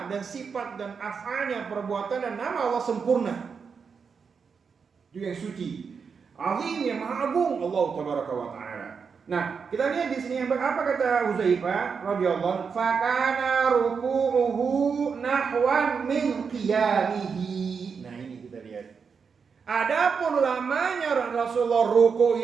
dan sifat dan af'alnya, perbuatan dan nama Allah sempurna. Itu yang suci, azim, yang maha agung, Allah tabaraka wa taala. Nah, kita lihat di sini apa kata Huzaifah radhiyallahu anhu, fakana ruku'uhu nahwan min qiyamihi. Nah, ini kita lihat. Adapun lamanya Rasulullah ruku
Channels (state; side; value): quieter; left; 5.8 dB